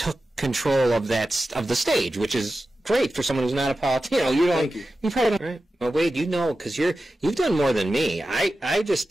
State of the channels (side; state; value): both; normal; correlation 0.93